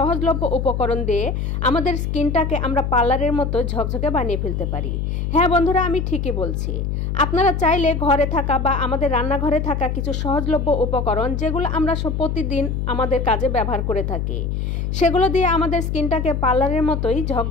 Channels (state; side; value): noise; left; hum, 2 dB below the sound